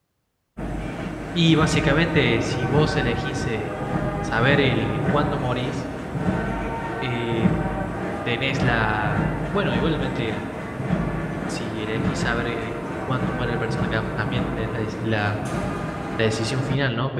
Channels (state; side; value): identical; both; correlation 1.00